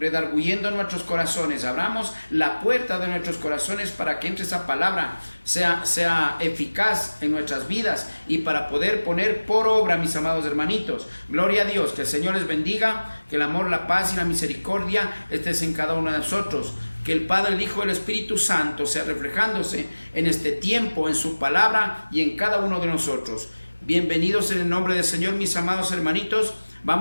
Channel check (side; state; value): both; inverted; correlation -1.00